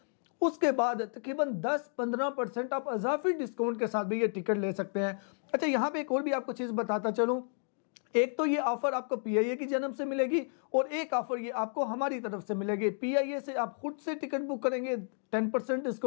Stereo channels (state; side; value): silent; right; 56 dB below the other